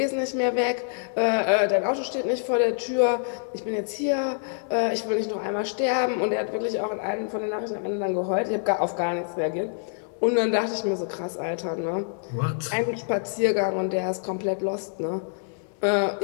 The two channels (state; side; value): silent; right; digital silence